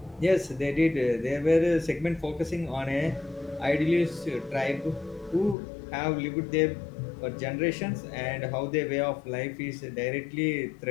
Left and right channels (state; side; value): drops out; right; at 5.6 s